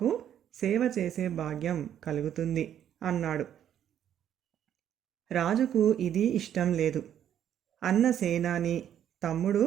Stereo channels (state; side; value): quieter; left; 10.1 dB